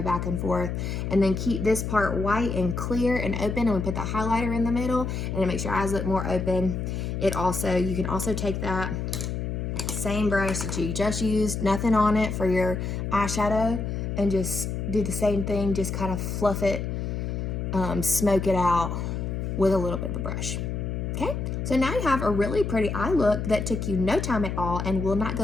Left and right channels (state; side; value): noise; left; hum, 3 dB below the sound